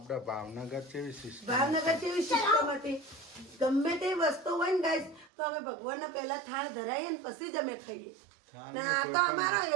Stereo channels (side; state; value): left; drops out; at 5.3 s